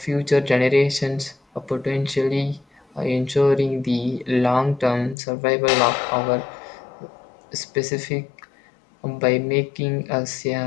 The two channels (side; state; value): right; drops out; at 5.2 s